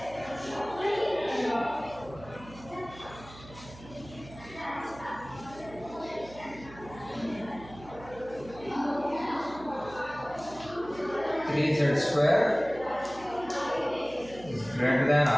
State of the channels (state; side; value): noise; right; hum, 18 dB below the sound